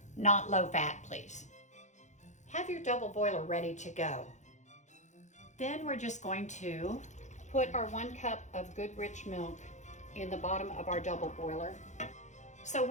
not low fat, please. Have your double boiler ready to go. Then we're just going to put our 1 cup of good rich milk in the bottom of our double boiler. So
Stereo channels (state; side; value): late; right; 0.35 ms